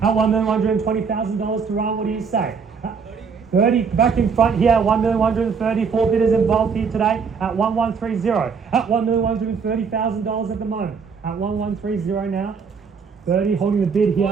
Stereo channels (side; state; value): left; quieter; 5.8 dB